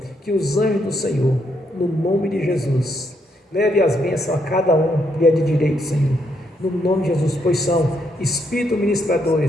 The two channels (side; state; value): both; normal; correlation 0.76